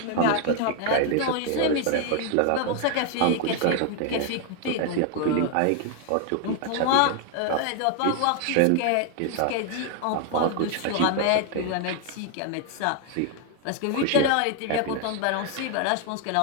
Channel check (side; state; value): both; different; correlation 0.00